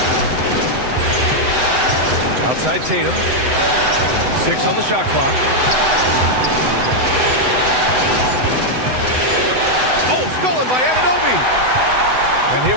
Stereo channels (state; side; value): late; left; 7.9 ms